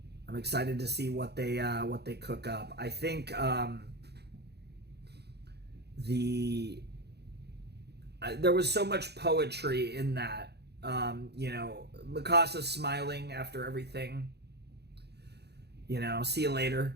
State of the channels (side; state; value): left; late; 0.48 ms